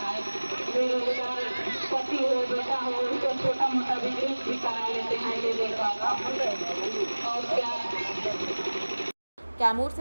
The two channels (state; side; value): inverted; both; correlation -1.00